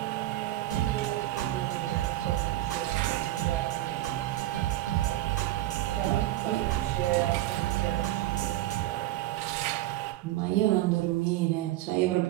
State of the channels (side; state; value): left; quieter; 15.2 dB